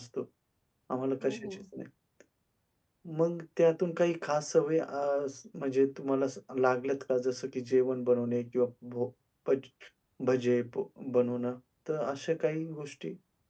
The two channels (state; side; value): identical; both; correlation 1.00